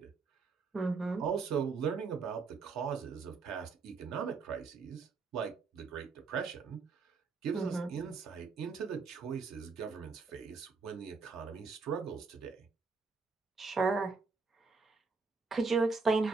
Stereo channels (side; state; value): left; quieter; 4.6 dB